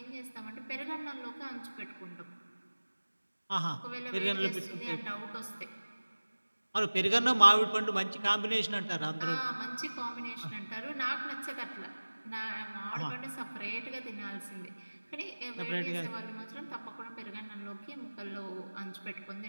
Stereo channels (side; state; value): both; inverted; correlation -1.00